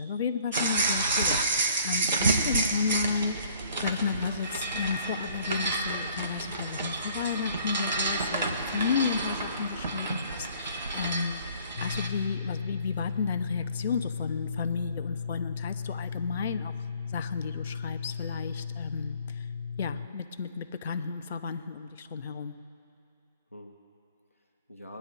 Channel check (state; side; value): inverted; both; correlation -0.58